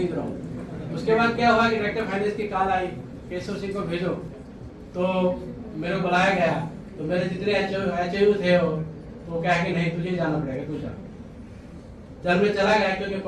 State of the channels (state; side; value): identical; both; correlation 1.00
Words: रॉन्ग। उसके बाद क्या हुआ कि डायरेक्टर फाइनेंस की कॉल आई, केशव सिंह को भेजो। तो मेरे को बुलाया गया, तो मेरे जितने एचओयू थे वो कहे कि नहीं तुझे जाना पड़ेगा, तू जा। जब मैं चला गया क्योंकि